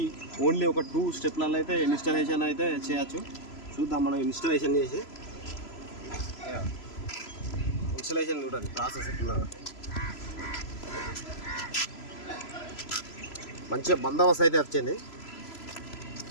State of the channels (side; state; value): right; late; 3.0 ms